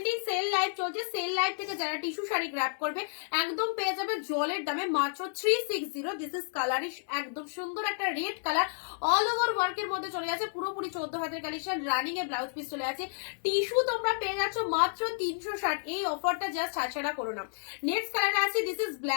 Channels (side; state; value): right; silent; 57 dB below the other